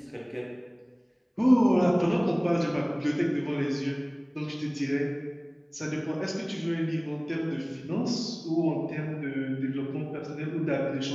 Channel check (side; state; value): both; identical; correlation 1.00